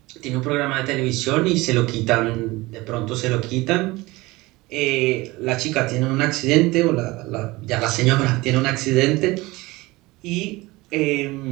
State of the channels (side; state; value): left; quieter; 21.2 dB